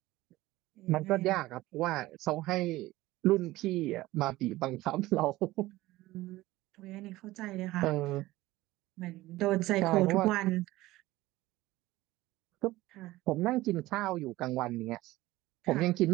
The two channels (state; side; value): quieter; left; 17.8 dB